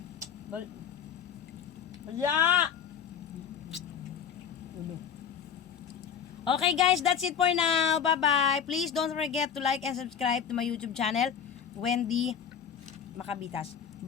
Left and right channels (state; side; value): quieter; right; 7.7 dB